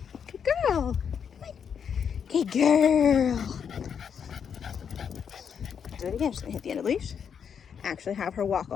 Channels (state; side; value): quieter; right; 7.3 dB